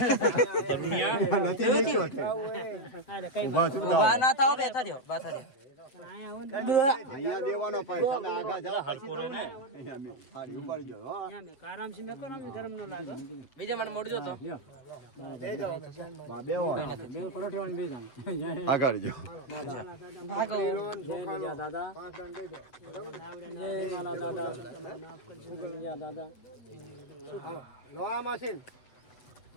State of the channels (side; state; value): right; late; 7.9 ms